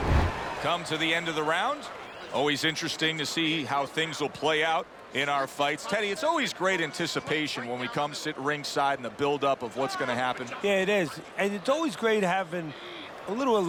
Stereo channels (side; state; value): both; identical; correlation 1.00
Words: Come to the end of the round. Always interesting to see how things will play out in our fights. Teddy, it's always great anticipation when we come sit ringside and the build-up of what's going to happen. Yeah, it is. And it's always great having a little